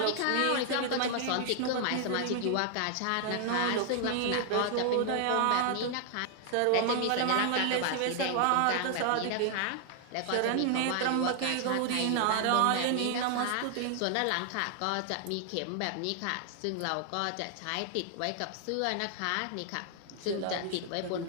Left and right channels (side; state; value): both; different; correlation 0.00